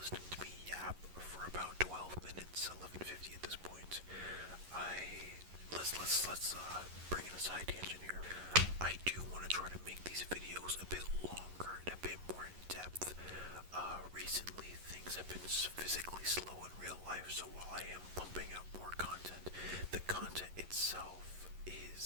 to me yap for about 12 minutes, 11:50 at this point. Let's bring in a side tangent here. I do want to try to make these videos a bit longer and a bit more in depth. Recently things have been physically slow in real life, so while I am pumping out more content, the content itself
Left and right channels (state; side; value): late; left; 11 ms